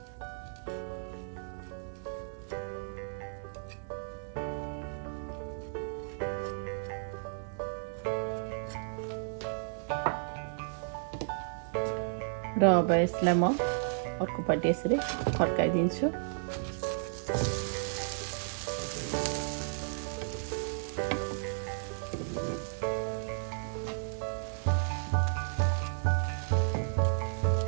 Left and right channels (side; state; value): left; silent; 55 dB below the other